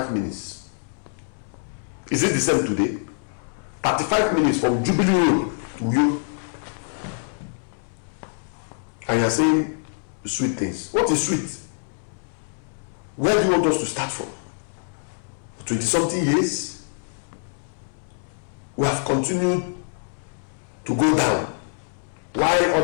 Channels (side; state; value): right; silent; 62 dB below the other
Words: minutes. Is it the same today? 35 minutes from Jubilee Road to Uyo. And you're saying sweet things. What is sweet? Where do you want us to start from? 20-something years, we have continued to go down while